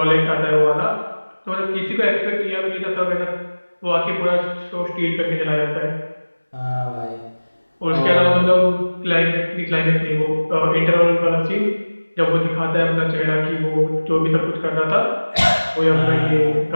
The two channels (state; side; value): inverted; both; correlation -1.00